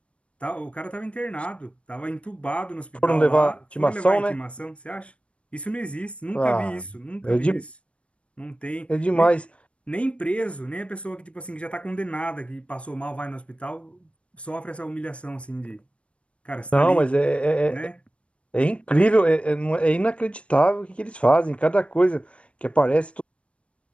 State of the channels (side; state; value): right; late; 0.061 ms